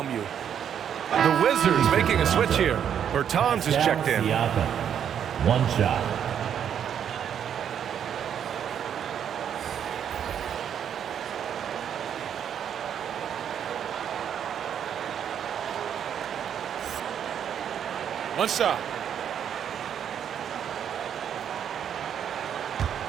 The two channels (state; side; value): quieter; left; 8.8 dB